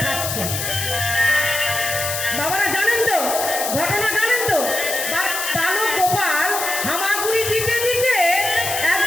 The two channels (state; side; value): noise; left; hiss, 3 dB below the sound